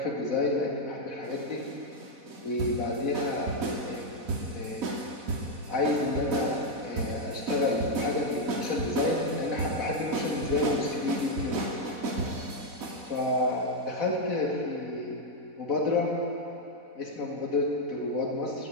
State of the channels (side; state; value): left; late; 4.1 ms